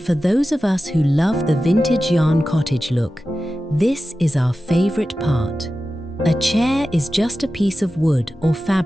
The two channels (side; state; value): both; normal; correlation 0.94